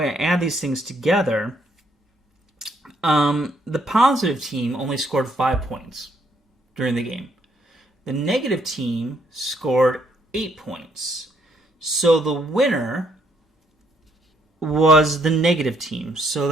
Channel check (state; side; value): normal; both; correlation 0.71